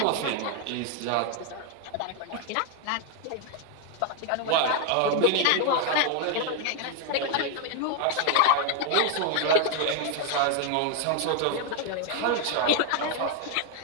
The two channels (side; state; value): both; different; correlation 0.01